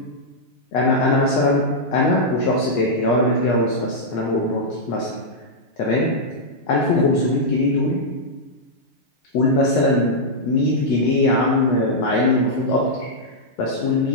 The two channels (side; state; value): right; late; 8.3 ms